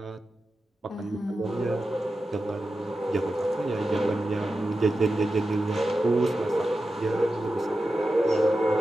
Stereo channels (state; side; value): normal; both; correlation 0.92